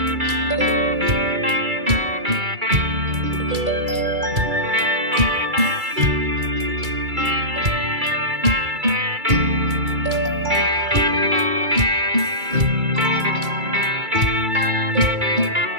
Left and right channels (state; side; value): late; left; 2.3 ms